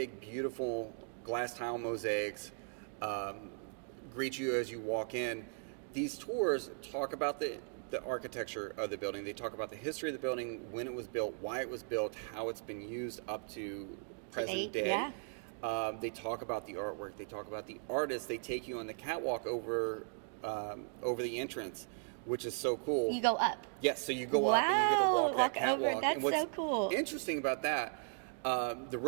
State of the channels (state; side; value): silent; left; 53 dB below the other